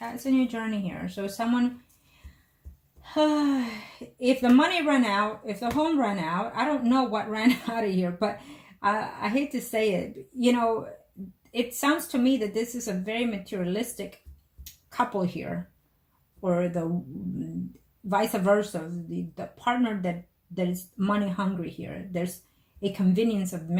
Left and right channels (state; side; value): identical; both; correlation 1.00